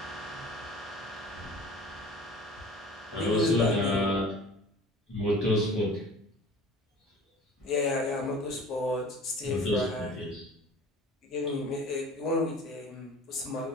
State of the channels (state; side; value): normal; both; correlation 0.44